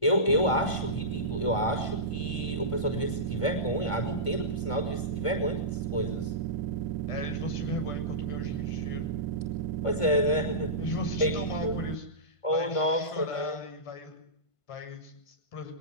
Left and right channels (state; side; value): late; right; 1.5 ms